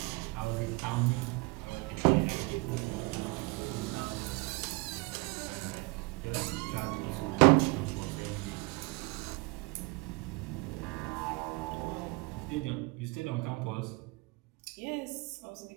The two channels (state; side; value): quieter; left; 26.5 dB